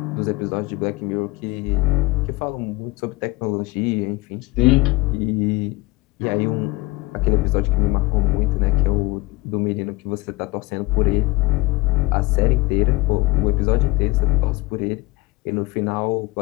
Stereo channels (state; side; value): quieter; right; 21.4 dB